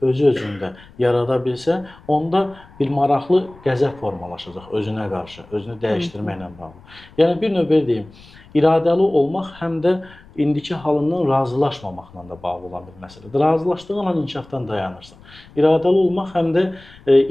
özü-özündə yarada bilsə, onda bir maraqlı qəzəb formalaşacaq özünə qarşı, özünü dəyişdirməklə bağlı. Yəni bir növ belə deyim, iradəli olmaq həm də indiki halından razılaşmamaqla da bağlı olan bir məsələdir. Razılaşdığın an inkişafdan dayanırsan. İradəli olmaq həm də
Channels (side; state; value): left; noise; rumble, 23 dB below the sound